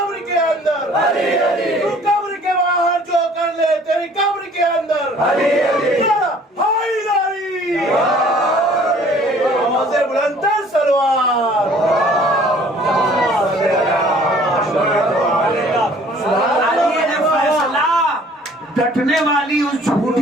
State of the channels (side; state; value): both; normal; correlation 0.54